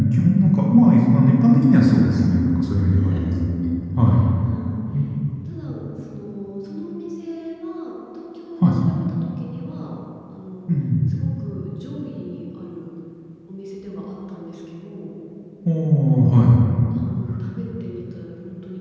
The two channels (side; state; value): both; identical; correlation 1.00